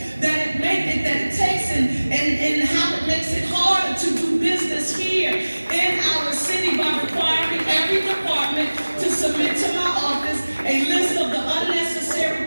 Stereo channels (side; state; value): both; inverted; correlation -1.00